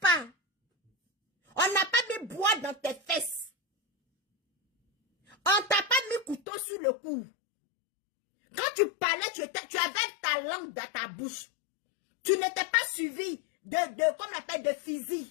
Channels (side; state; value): right; drops out; at 6.4 s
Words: On n'a pas mis bois dans tes fesses. On t'a pas mis couteau sur le cou. Quand tu parlais, tu avais ta langue dans ta bouche. Tu n'étais pas suivi comme on appelle, de